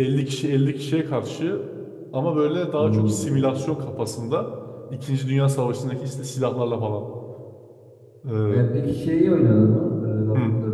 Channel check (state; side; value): identical; both; correlation 1.00